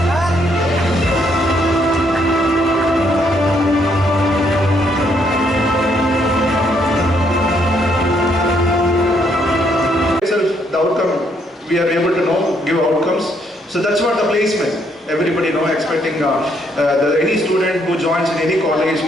The outcome, we are able to give outcomes. So that's what the placement. Everybody expecting any student who joins in any college,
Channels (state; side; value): normal; both; correlation 0.71